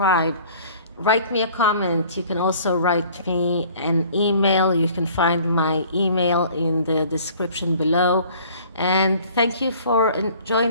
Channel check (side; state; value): both; inverted; correlation -0.52